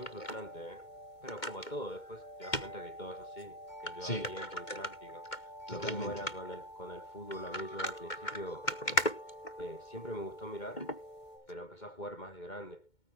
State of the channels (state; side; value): late; right; 2.2 ms